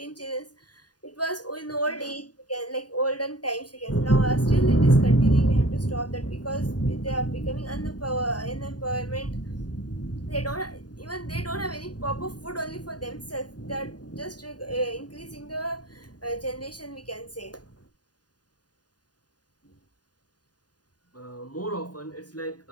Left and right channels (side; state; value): right; late; 0.69 ms